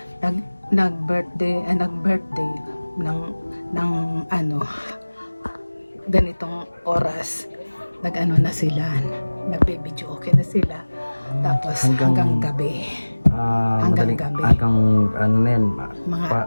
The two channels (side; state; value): both; inverted; correlation -1.00